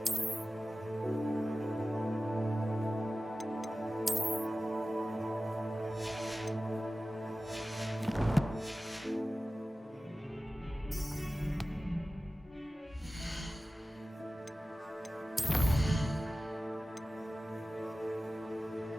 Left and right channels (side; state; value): both; normal; correlation 0.96